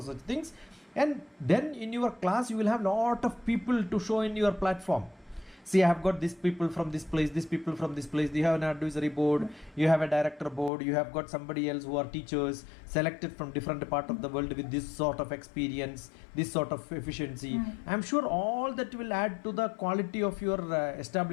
such things. And then in your class you will have lot of people to show in your platform. See, I have got these people from this place, these people from this place. You have an advisory board, you have a director board, you have got somebody else who are teachers selected from different part of the world with this sort of experience, this sort of efficiency. I'm sure all that will add to the quality of your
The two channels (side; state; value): right; drops out; at 10.7 s